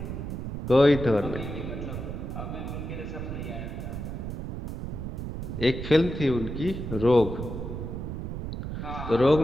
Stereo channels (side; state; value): right; noise; rumble, 6 dB below the sound